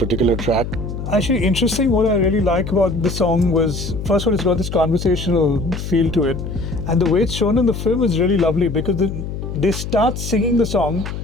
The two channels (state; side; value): noise; left; hum, 6 dB below the sound